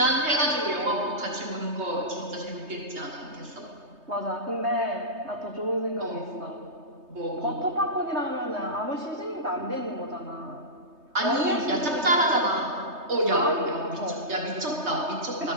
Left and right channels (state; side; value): late; left; 3.2 ms